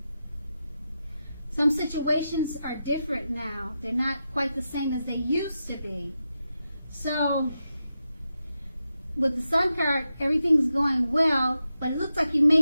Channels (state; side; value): inverted; both; correlation -0.89